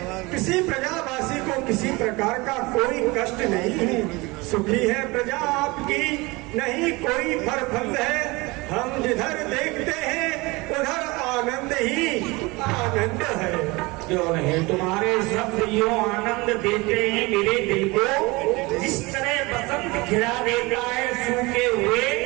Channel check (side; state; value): left; quieter; 23.9 dB